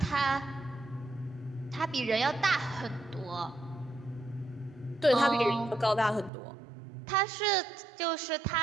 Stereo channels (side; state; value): left; drops out; at 6.3 s